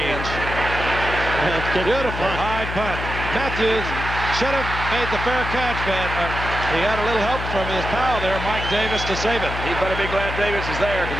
high punt. Matthews should have made the fair catch, but he had a little help from his pal there, Mike Davis, to save it. He better be glad Davis is there, because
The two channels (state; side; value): noise; left; hum, 6 dB below the sound